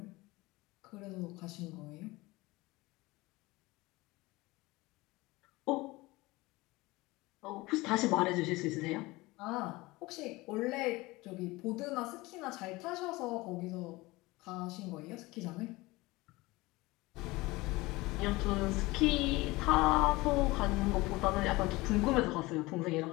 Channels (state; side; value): quieter; right; 21.3 dB